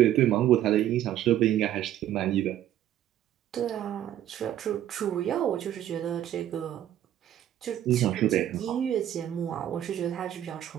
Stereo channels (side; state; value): left; quieter; 11.8 dB